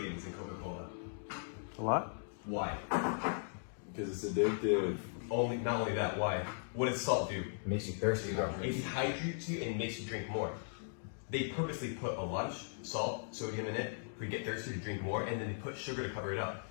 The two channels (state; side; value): silent; right; digital silence